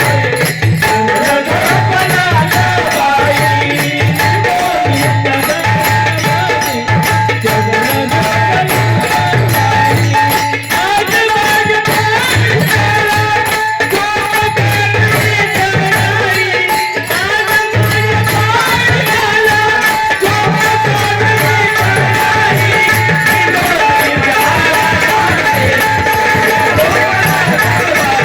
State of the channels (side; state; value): both; identical; correlation 1.00